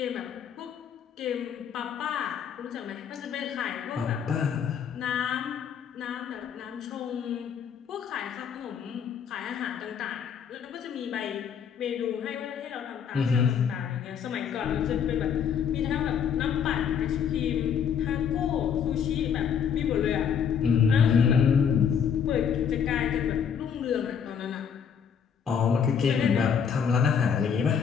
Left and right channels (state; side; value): quieter; right; 7.5 dB